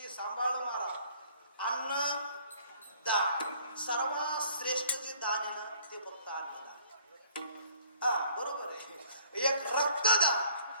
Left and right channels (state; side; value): inverted; both; correlation -0.57